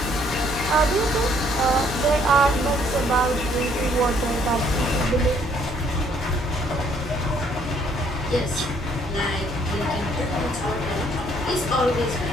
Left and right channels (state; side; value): normal; both; correlation 0.64